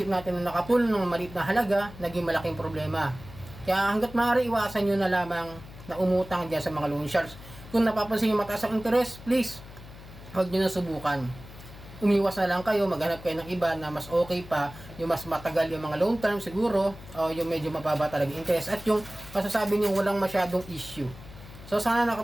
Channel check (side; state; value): left; noise; hum, 17 dB below the sound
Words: natin na nakatulong ng maliit na halaga, naging malaking problema. Kaya hanggat maaari, iwasan nyo na lamang na umutang dyan sa mga loan sharks. Kung napapansin yung mataas ang interest, please, huwag nyo na subukan. Umiwas na lang kayo, maghanap kayo ng iba na mas okay pa, yung mas matagal yung mga long term siguro, o yung medyo mababa talaga interest, at yung masasabi niyo walang masyadong issue. So sana